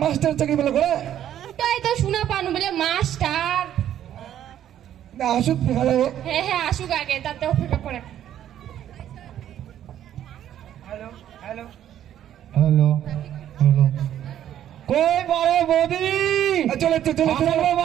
মাস্টার চাকরি বলে করে। তাই তো শোনা পানু বলে মাস্টার। না আসুক দেখা যাবে। হ্যাঁ হ্যাঁ, আসুক আগে, তাতে অপেক্ষা করে। হ্যালো হ্যালো হ্যালো হ্যালো, কই বড় বৌদি? চলে চলে চলে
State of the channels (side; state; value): left; quieter; 11.0 dB